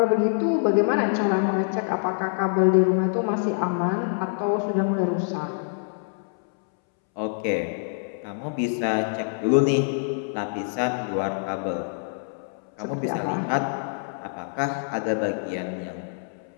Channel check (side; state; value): right; silent; 61 dB below the other